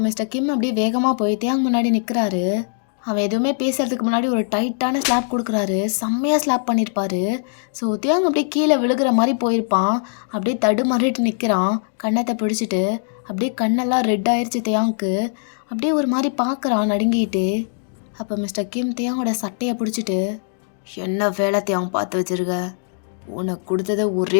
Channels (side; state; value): right; silent; digital silence